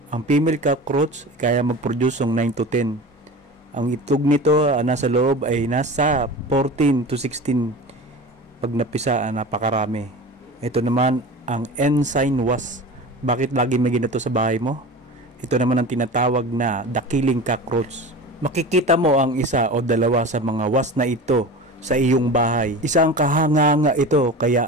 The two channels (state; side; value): normal; both; correlation 0.33